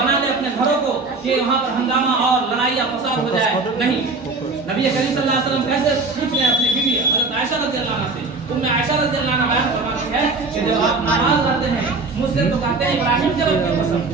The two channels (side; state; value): left; quieter; 3.8 dB